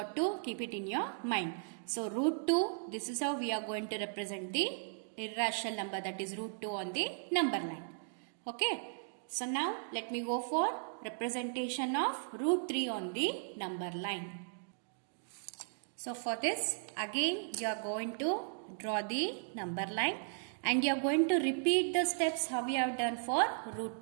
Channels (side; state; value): left; silent; digital silence